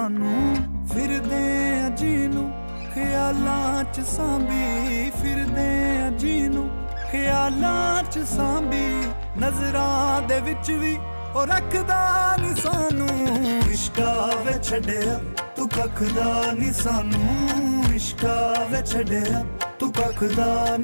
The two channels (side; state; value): both; inverted; correlation -1.00